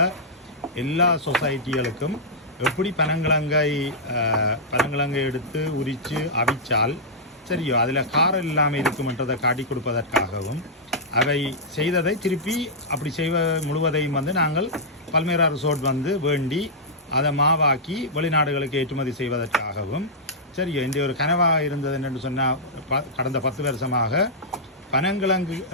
எல்லா சொசைட்டிகளுக்கும் எப்படி பனங்கிழங்கை எடுத்து உரித்து அவிச்சால் சரியோ அதில் காரம் இல்லாமல் இருக்குமென்றதை காட்டி கொடுப்பதற்காகவும், அவை செய்ததை திருப்பி அப்படி முழுவதையும் வந்து நாங்கள் பல்மேரா ரிசோர்ட் வந்து வேண்டி அதை மாவாக்கி வெளிநாடுகளுக்கு ஏற்றுமதி செய்வதற்காகவும் சரி இந்த ஒரு கனவாக இருந்தது என்று சொன்னால், கடந்த 10 வருஷமாக பனங்கிழங்கு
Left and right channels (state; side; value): normal; both; correlation -0.11